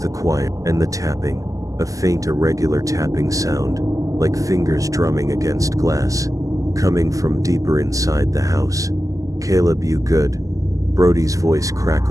the quiet and the tapping, a faint irregular tapping sound, like fingers drumming against glass, coming from deeper inside the house. "Caleb, you good?" Brody's voice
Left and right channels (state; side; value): late; left; 0.16 ms